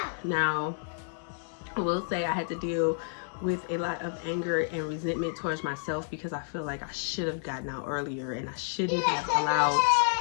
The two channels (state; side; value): silent; right; digital silence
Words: Now, I will say I had to deal with a lot of anger and resentment towards myself, because I feel like I should have gotten out earlier, and I shouldn't have allowed